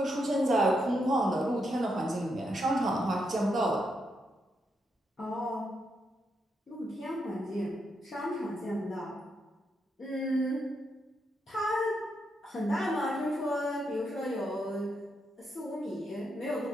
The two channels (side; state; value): both; normal; correlation 0.81